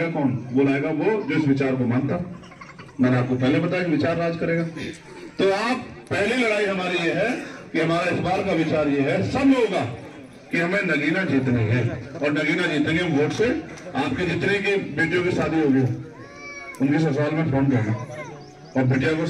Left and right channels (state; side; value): identical; both; correlation 1.00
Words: कौन? वो लाएगा वो जो इस विचार को मानता। मैंने आपको पहले बताया विचार राज करेगा। तो आप पहली लड़ाई हमारी ये है कि हमारा इस बार का विचार ये है सब लोगों का कि हमें नगीना जीतनी है, और नगीना जीतेंगे वोट से। आपके जितने की बेटियों की शादी होगी उनके ससुराल में फोन करना और बेटिया को